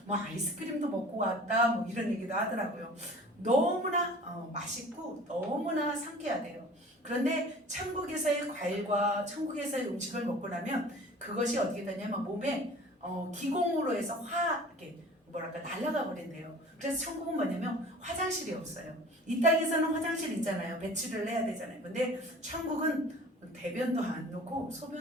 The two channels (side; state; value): both; normal; correlation 0.44